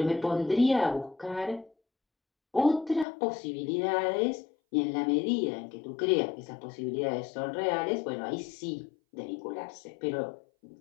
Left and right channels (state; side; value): drops out; right; at 3.1 s